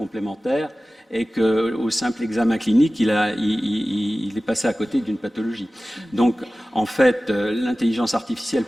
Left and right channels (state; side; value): normal; both; correlation 0.96